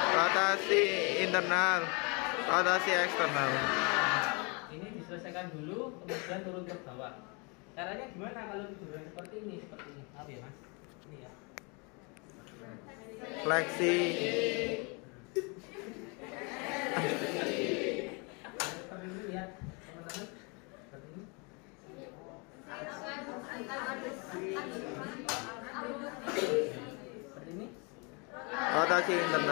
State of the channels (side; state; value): right; quieter; 31.8 dB